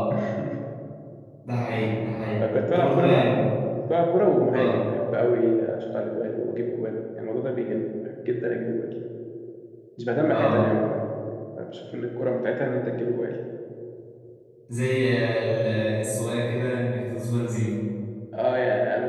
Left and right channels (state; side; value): identical; both; correlation 1.00